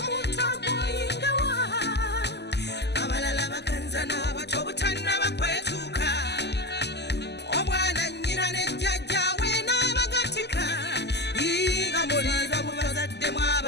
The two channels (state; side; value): late; right; 0.50 ms